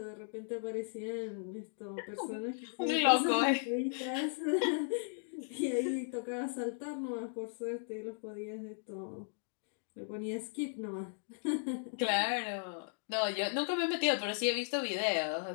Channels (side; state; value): right; silent; digital silence